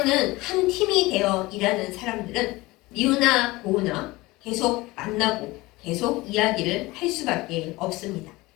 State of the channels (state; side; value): quieter; right; 21.0 dB